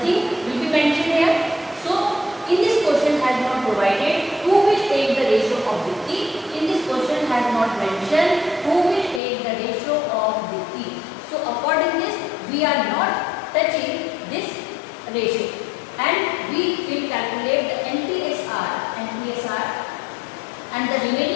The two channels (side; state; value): right; drops out; at 9.2 s